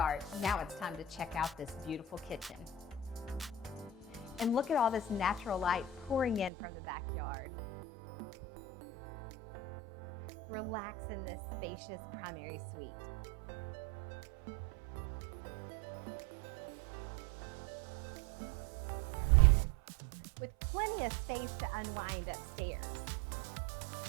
Now it's time to check out this beautiful kitchen. And look at all this natural light pouring in from the backyard. Relax in this spacious primary suite. With plenty of space to unwind upstairs.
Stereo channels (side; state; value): left; drops out; at 6.5 s